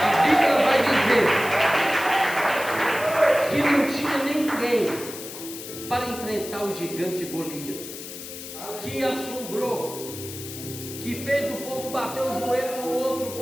A Bíblia vai dizer que não tinha ninguém para enfrentar o gigante Golias, que assombrou, que fez o povo bater o joelho no outro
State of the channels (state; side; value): noise; left; hiss, 11 dB below the sound